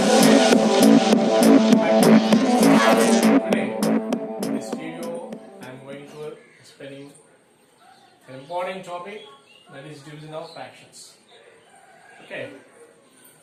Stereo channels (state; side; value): identical; both; correlation 1.00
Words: in this video, I am going to explaining an important topic, that is division of fractions. Okay.